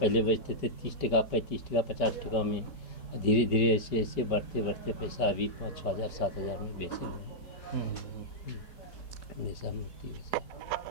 पहले बेचते थे 30 टका, 35 टका, 50 टका में। धीरे धीरे ऐसे बढ़ते बढ़ते पैसा अभी 5-6 हज़ार 7 हज़ार में बेचे हुए हैं ऐसा मूर्ति वैसा।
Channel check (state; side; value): late; right; 5.1 ms